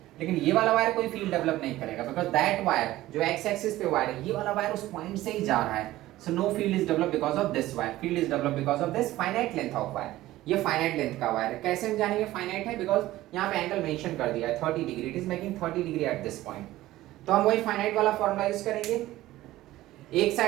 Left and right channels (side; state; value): left; quieter; 16.0 dB